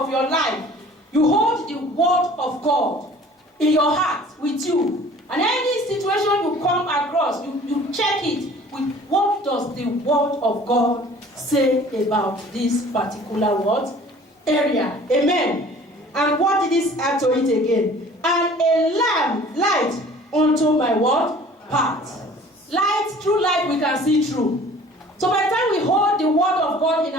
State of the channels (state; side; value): normal; both; correlation 0.49